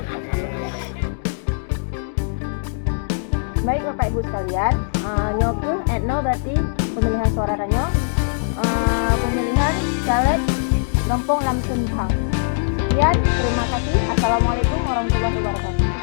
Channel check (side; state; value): right; silent; digital silence